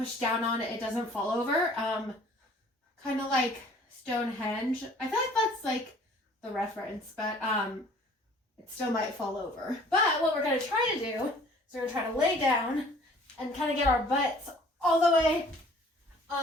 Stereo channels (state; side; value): normal; both; correlation 0.53